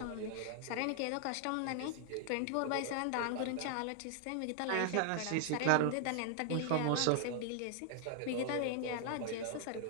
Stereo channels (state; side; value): different; both; correlation 0.00